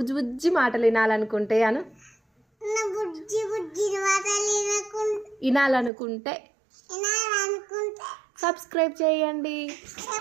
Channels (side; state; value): left; drops out; at 5.9 s